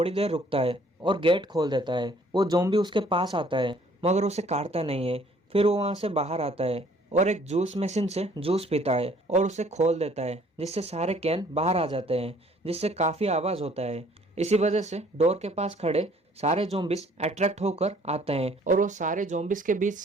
देर रुकता है और गेट खोल देता है। वो ज़ॉम्बी उसके पास आता है, मगर उसे काटता नहीं है। फिर वो वहाँ से बाहर आता है और एक जूस मशीन से जूस पीता है और उसे खोल देता है, जिससे सारे कैन बाहर आ जाते हैं, जिससे काफ़ी आवाज़ होता है। इसी वजह से डोर के पास खड़े सारे ज़ॉम्बीज अट्रैक्ट होकर आते हैं और वो सारे ज़ॉम्बीज के बीच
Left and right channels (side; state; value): both; normal; correlation 0.59